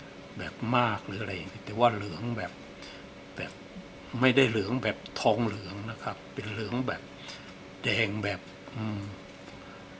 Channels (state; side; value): identical; both; correlation 1.00